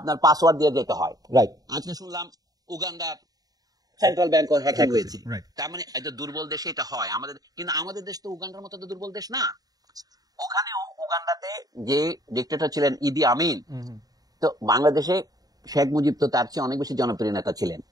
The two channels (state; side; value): late; left; 0.18 ms